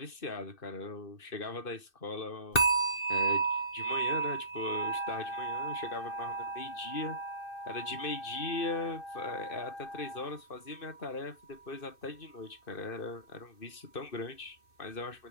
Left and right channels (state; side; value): late; right; 2.6 ms